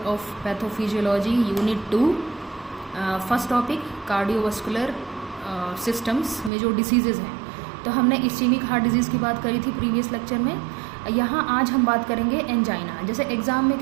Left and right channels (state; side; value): drops out; left; at 6.5 s